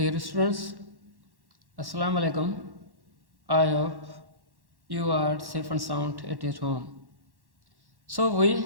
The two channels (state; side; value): late; left; 1.1 ms